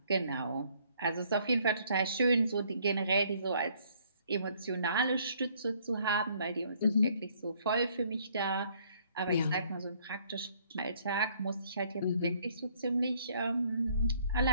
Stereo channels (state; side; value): inverted; both; correlation -0.64